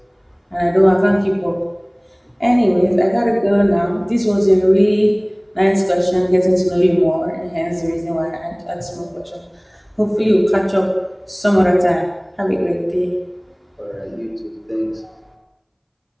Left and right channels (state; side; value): identical; both; correlation 1.00